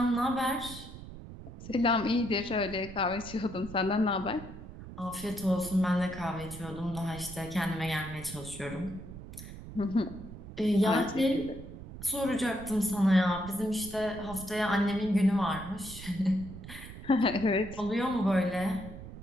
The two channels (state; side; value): noise; right; rumble, 13 dB below the sound